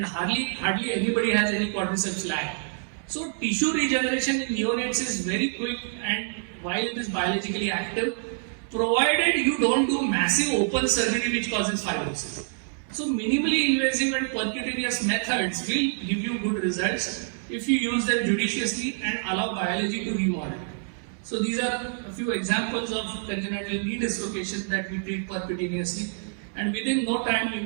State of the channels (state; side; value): silent; left; digital silence